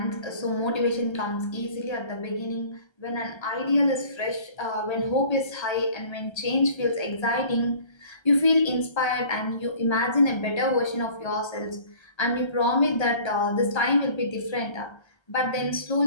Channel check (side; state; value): right; late; 1.3 ms